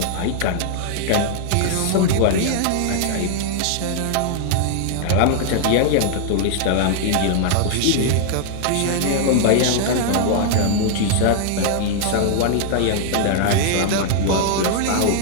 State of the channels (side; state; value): both; different; correlation -0.01